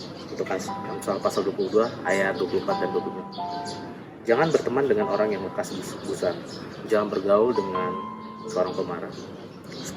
untuk Amsal pasal 22 ayat 24 dan 25. Jangan berteman dengan orang yang lekas gusar. Jangan bergaul dengan seorang pemarah,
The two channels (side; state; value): both; identical; correlation 1.00